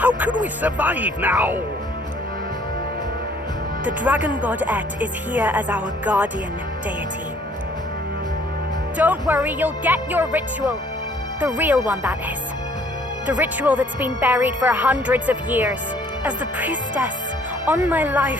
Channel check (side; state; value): both; normal; correlation 0.60